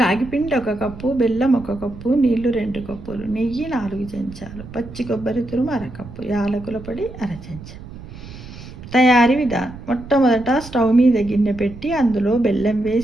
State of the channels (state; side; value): noise; right; rumble, 15 dB below the sound